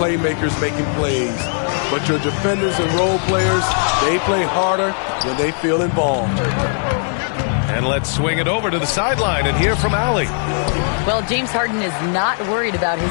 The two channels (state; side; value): silent; right; 57 dB below the other